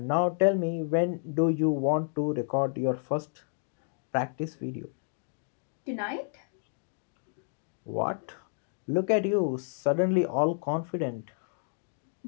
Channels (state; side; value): silent; right; 57 dB below the other